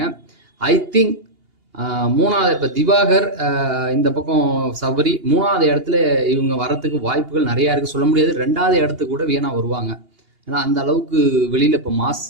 ஐ திங்க் 3வது இப்போ திவாகர், இந்த பக்கம் சபரி 3வது இடத்துல இவங்க வரத்துக்கு வாய்ப்புகள் நிறையா இருக்குது. சொல்ல முடியாது 2வது இடத்துக்கு கூட வீணா வருவாங்க. ஏன்னா அந்த அளவுக்கு வெளியில் இப்போ மாஸ்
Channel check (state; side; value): late; left; 2.8 ms